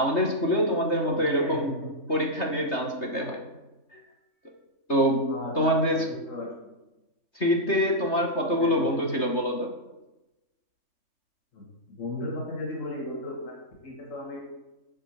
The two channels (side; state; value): right; late; 3.3 ms